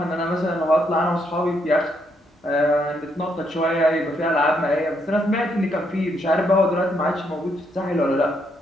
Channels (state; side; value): normal; both; correlation 0.75